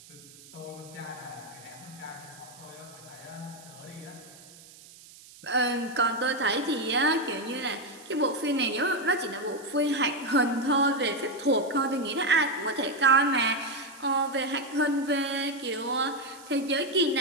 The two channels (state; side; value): noise; right; hiss, 21 dB below the sound